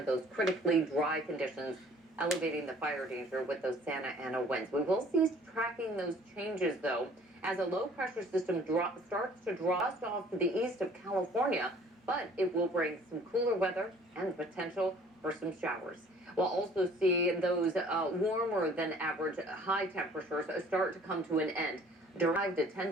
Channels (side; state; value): both; normal; correlation 0.54